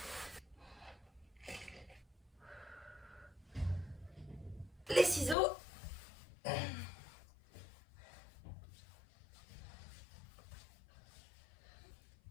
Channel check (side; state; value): right; drops out; at 5.4 s